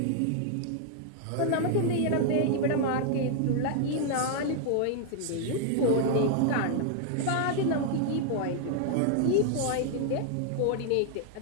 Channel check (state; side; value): different; both; correlation 0.00